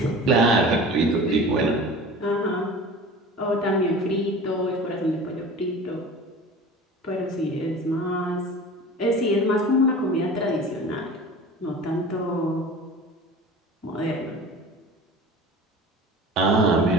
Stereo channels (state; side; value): normal; both; correlation 0.38